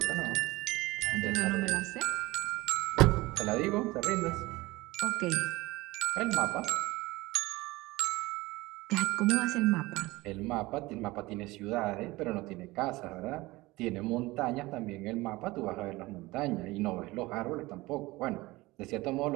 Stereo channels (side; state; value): left; quieter; 20.5 dB